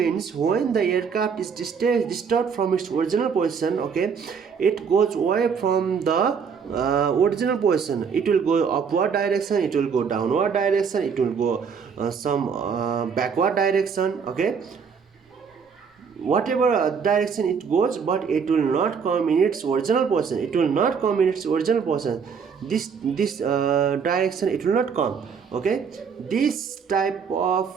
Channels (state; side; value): quieter; left; 6.3 dB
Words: when the aircraft is disturbed from its original position, okay, it goes away from the original position. It will go upward direction, it will go downward direction, it will go some backward direction. Okay, whatever direction it goes, but it will not come in its original position. This direction it will not come. Okay, this type of